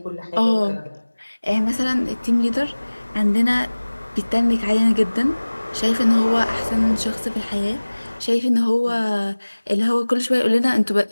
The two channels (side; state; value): both; inverted; correlation -1.00